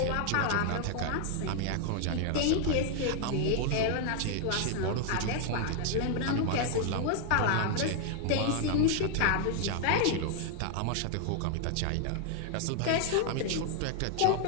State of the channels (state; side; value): different; both; correlation 0.00